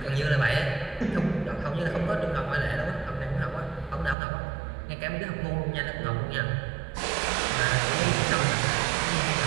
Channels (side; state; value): left; drops out; at 4.2 s